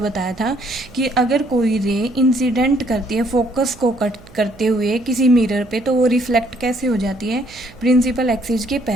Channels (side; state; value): right; noise; hum, 23 dB below the sound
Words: था कि अगर कोई रे इंसिडेंट करती है फोकस को कट करते हुए किसी मिरर पे, तो वो रिफ्लेक्ट कैसे हो जाती है, प्रिंसिपल एक्सिस के